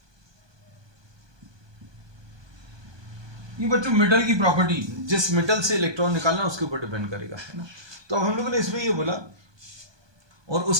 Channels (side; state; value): left; late; 1.2 ms